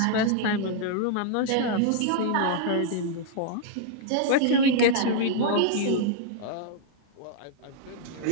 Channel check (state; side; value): different; both; correlation -0.01